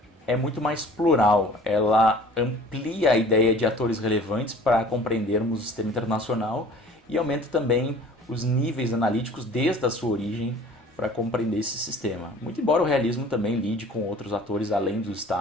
é muito mais plural, ela amplia a ideia de atores relevantes para compreendermos o sistema internacional e aumenta também os níveis analíticos desde a sua origem para compreender esse sistema. Muito embora o realismo também lide com outros atores além do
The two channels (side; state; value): both; normal; correlation 0.48